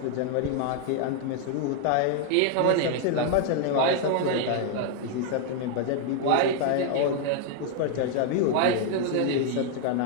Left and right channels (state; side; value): different; both; correlation 0.00